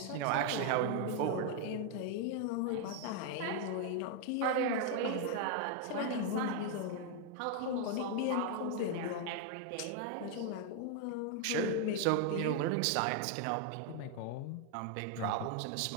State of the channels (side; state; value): both; different; correlation 0.00